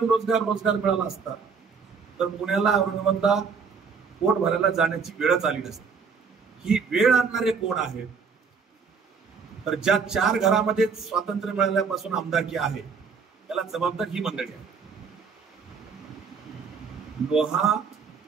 मिळाला असता तर पुण्याला, औरंगाबादला पोट भरायला जाण्याची वेळच आली नसती. ही वेळ आणणारे कोण आहेत? तर ज्या 4 घरामध्ये स्वातंत्र्य मिळाल्यापासून आमदारकी आहे त्याला जबाबदार ही मंडळी आहे. लोहा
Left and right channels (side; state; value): left; quieter; 5.6 dB